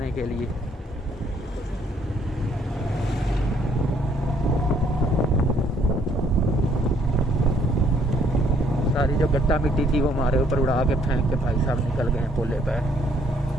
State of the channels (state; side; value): normal; both; correlation 0.65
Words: के लिए। सारी जो गट्टा मिट्टी थी वो हमारे ऊपर उड़ा के फेंक के भाई साहब निकल गए हैं पोले पे।